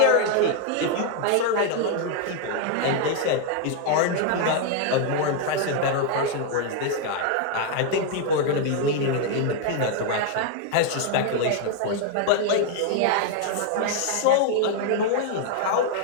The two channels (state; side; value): different; both; correlation 0.00